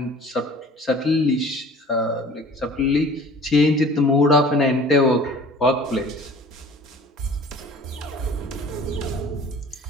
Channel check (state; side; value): normal; both; correlation 0.46